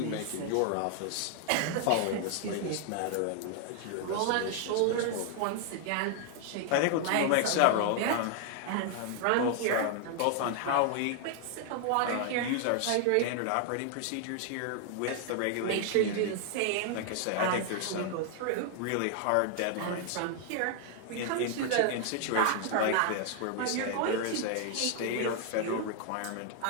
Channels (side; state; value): both; different; correlation 0.00